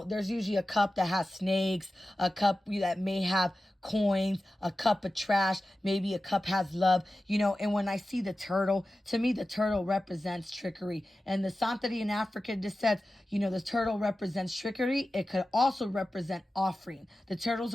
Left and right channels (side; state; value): both; normal; correlation 0.94